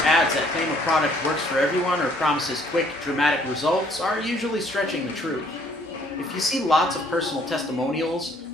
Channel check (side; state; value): both; normal; correlation 0.62